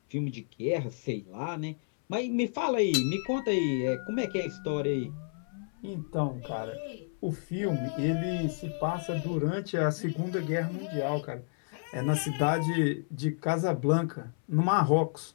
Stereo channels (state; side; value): silent; right; 57 dB below the other